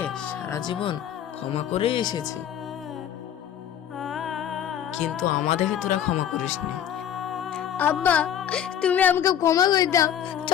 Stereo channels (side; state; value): right; quieter; 9.8 dB